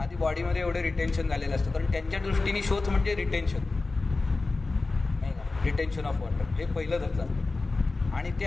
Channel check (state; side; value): quieter; right; 3.6 dB